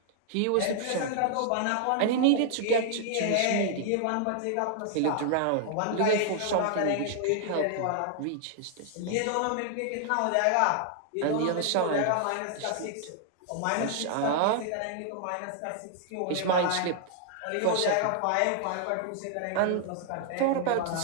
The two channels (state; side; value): different; both; correlation 0.00